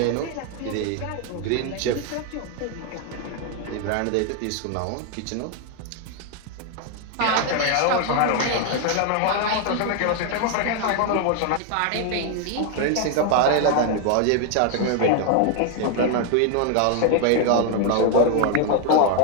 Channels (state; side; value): different; both; correlation 0.00